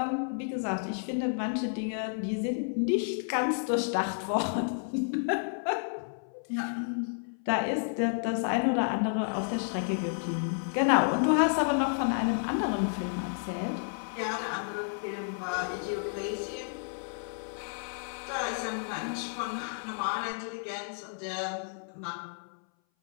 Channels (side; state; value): right; silent; 57 dB below the other